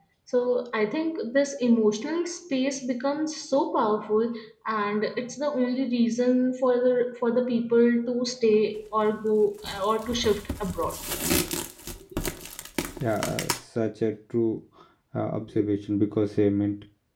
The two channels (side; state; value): both; identical; correlation 1.00